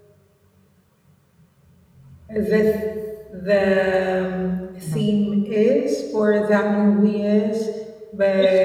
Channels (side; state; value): both; identical; correlation 1.00